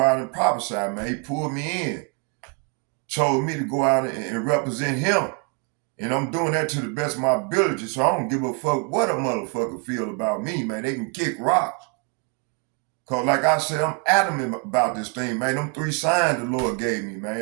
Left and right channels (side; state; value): left; quieter; 32.0 dB